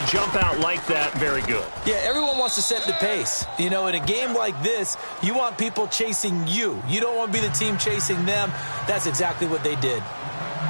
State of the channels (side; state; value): both; inverted; correlation -1.00